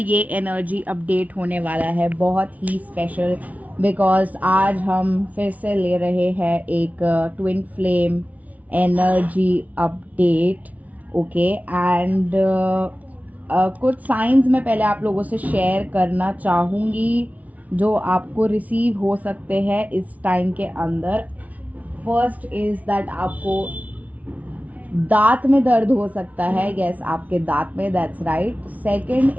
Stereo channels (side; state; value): left; late; 0.071 ms